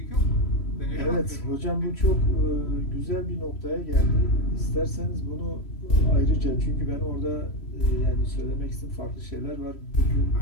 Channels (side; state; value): right; late; 3.1 ms